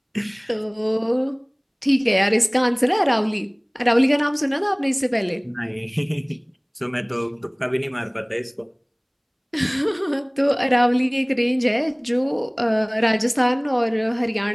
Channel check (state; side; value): identical; both; correlation 1.00